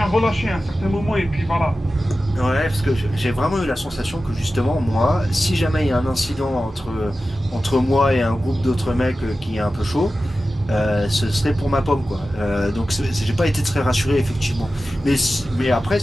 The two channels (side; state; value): both; normal; correlation 0.94